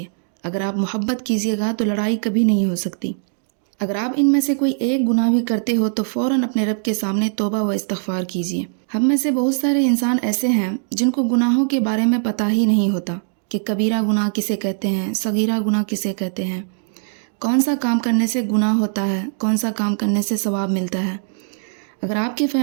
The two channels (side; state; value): left; silent; 65 dB below the other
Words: اگر آپ محبت کیجیے گا تو لڑائی کبھی نہیں ہو سکتی. اگر آپ ان میں سے کوئی ایک گناہ بھی کرتے ہو تو فوراً اپنے رب کے سامنے توبہ و استغفار کیجیے. ہم میں سے بہت سارے انسان ایسے ہیں جن کو گناہوں کے بارے میں پتہ ہی نہیں ہوتا کہ کبیرہ گناہ کسے کہتے ہیں، صغیرہ گناہ کسے کہتے ہیں، کون سا کام کرنے سے گناہ ہوتا ہے، کون سا کام کرنے سے ثواب ملتا ہے. اگر آپ کی